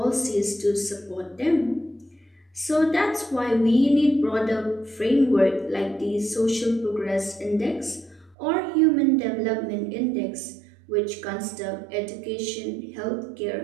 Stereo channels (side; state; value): left; drops out; at 8.3 s